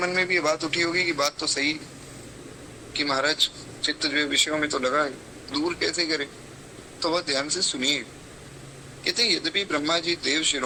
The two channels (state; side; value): identical; both; correlation 1.00